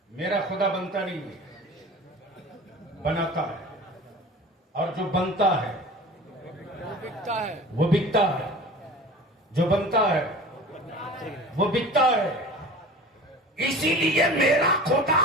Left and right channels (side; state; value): both; normal; correlation 0.38